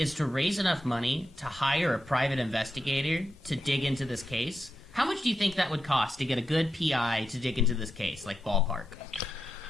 to raise enough money to hire a private investigator to dig into this case. How much do you think that would cost to get a good PI to dig into this case, like ballpark?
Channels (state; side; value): normal; both; correlation 0.87